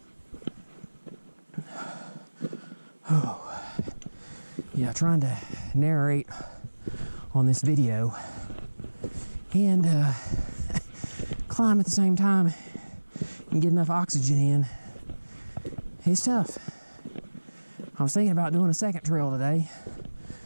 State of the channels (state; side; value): inverted; both; correlation -1.00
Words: Oh, yeah, trying to narrate on this video and climb at the same time and get enough oxygen in. It's tough. I was thinking about doing a second trail today,